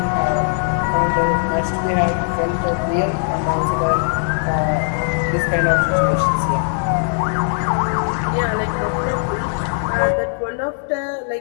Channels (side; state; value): right; silent; 63 dB below the other